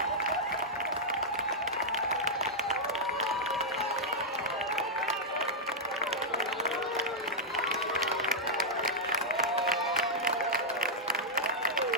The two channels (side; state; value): both; normal; correlation -0.07